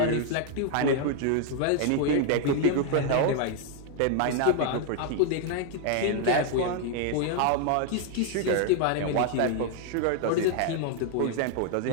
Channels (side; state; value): both; different; correlation 0.00